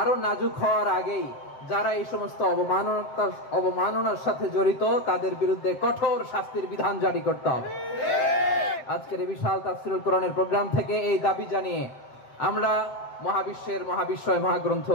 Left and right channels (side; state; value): right; late; 7.6 ms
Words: নাজুক হওয়ার আগেই যারা এই সমস্ত অবমাননার সাথে জড়িত তাদের বিরুদ্ধে কঠোর শাস্তির বিধান জারি করতে হবে। আজকের এই বিশাল তাফসীরুল কোরআনের প্রোগ্রাম থেকে এই দাবি জানিয়ে আমরা মহাবিশ্বের মহাবিশ্বয় মহাগ্রন্থ